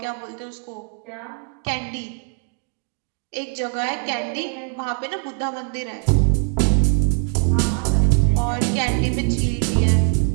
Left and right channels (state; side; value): quieter; left; 38.6 dB